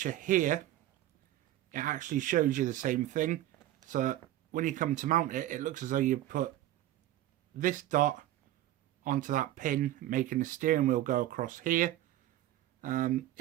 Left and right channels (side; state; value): left; quieter; 13.9 dB